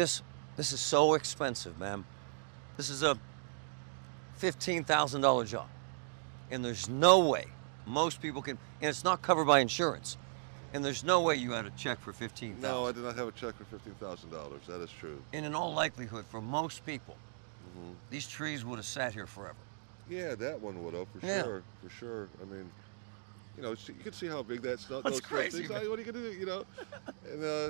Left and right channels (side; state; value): left; silent; digital silence